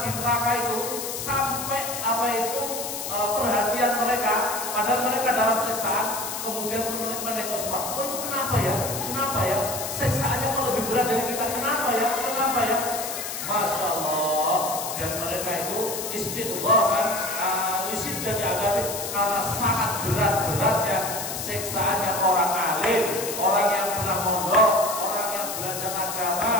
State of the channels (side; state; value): left; noise; hiss, 6 dB below the sound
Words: di neraka itu sampai apa itu perhatian mereka, padahal mereka dalam siksaan, kemudian menengok semua. Oh itu kenapa ya? Kenapa ya? Siksaannya kok lebih berat dari kita? Kenapa ya? Kenapa ya? Masya Allah. Dan mereka itu istighfar lisit dan diagami karena sangat berat-beratnya siksaannya orang alim, orang yang pernah mondok, orang yang belajar agama,